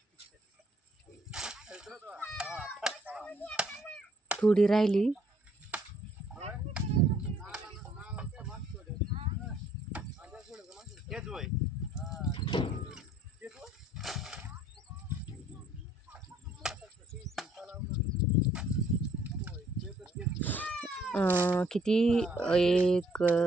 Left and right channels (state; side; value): normal; both; correlation 0.63